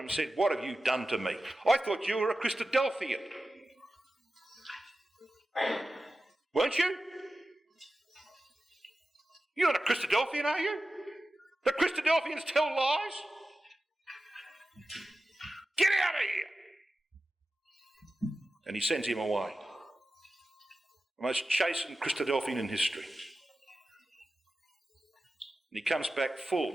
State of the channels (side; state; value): both; normal; correlation 0.94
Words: and said, what have you done to me? I thought you were a Christadelphian. Weren't you? You're not a Christadelphian, are you? The Christadelphians tell lies? Get out of here! And he sends him away. The most chastened Christadelphian in history. And he comes back